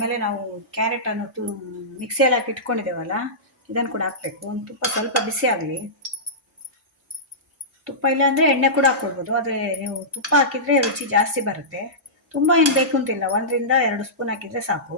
ನಾವು ಕ್ಯಾರೆಟನ್ನು ಮಿಕ್ಸಿಯಲ್ಲಿ ಹಾಕಿ ಇಟ್ಕೊಂಡಿದ್ದೇವಲ್ಲ, ಇದನ್ನು ಕೂಡ ಹಾಕಬೇಕು. ಒಂದು ತುಪ್ಪ ಸ್ವಲ್ಪ ಬಿಸಿ ಆಗಲಿ. ತುಪ್ಪ ಇಲ್ಲ ಅಂದರೆ ಎಣ್ಣೆ ಕೂಡ ಹಾಕ್ಕೊಳ್ಬೋದು. ಆದರೆ ನೀವು ತುಪ್ಪ ಹಾಕಿದರೆ ರುಚಿ ಜಾಸ್ತಿ ಬರುತ್ತೆ. ತುಂಬ ಏನು ಬೇಕು ಅಂತಿಲ್ಲ, 1ರಿಂದ 2 ಸ್ಪೂನ್ ಹಾಕಿದರೆ ಸಾಕು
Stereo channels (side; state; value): both; normal; correlation -0.17